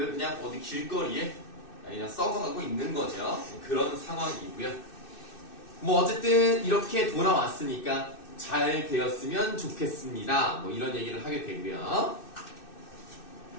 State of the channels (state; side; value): late; right; 2.6 ms